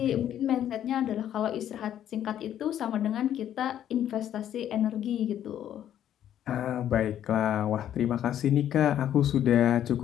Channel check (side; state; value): right; quieter; 10.8 dB